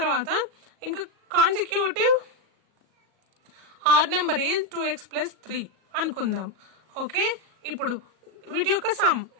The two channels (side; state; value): left; late; 38 ms